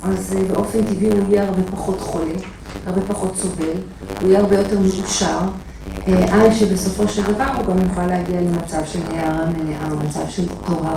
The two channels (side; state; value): both; identical; correlation 1.00